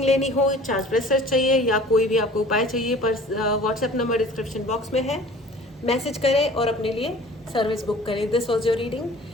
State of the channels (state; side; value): normal; both; correlation 0.47